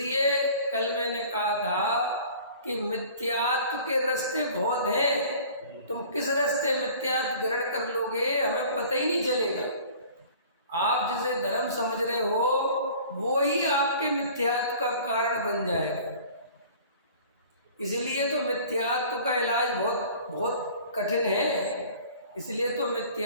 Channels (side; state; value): both; inverted; correlation -0.47